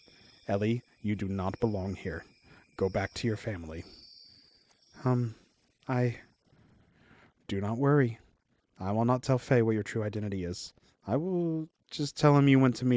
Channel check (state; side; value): identical; both; correlation 1.00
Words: Ellie, you do not belong here. Go back to your family. I... Do not worry. I will not tell Faye what your true identity is. I will just tell him you went to